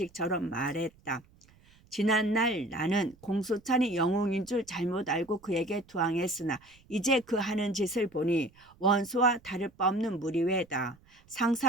말했다. 지난날 나는 공소찬이 영웅인 줄 잘못 알고 그에게 투항했으나 이제 그 하는 짓을 보니 원소와 다를 바 없는 무리외다.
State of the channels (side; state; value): right; noise; rumble, 29 dB below the sound